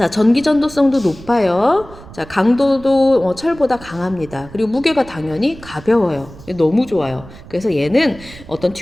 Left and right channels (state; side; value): noise; right; rumble, 18 dB below the sound